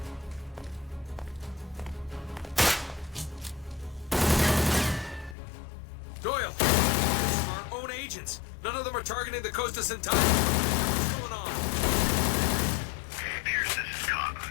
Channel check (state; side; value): drops out; right; at 5.4 s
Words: Doyle! Our own agents! None of them are targeting the Costas and Tabbins. What's going on? Pierce, this is